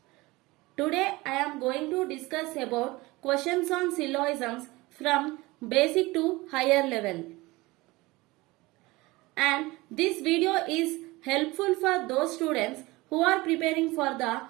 Today I am going to discuss about questions on syllogisms from basic to higher level. And this video is helpful for those students who are preparing for the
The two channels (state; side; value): quieter; left; 21.4 dB